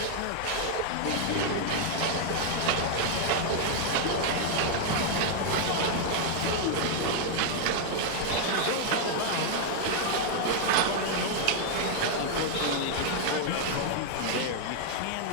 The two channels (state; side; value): different; both; correlation 0.00